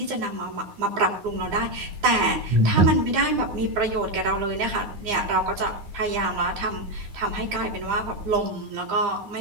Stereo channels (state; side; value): late; left; 9.8 ms